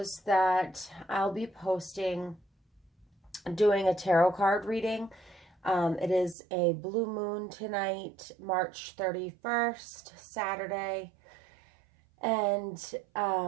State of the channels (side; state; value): left; drops out; at 6.4 s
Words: that I'll be posting doing a tarot card reading. It is a blue moon tonight, March 31st, Saturday, and